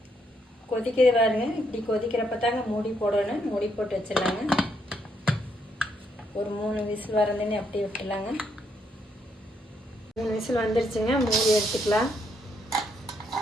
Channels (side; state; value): both; normal; correlation 0.75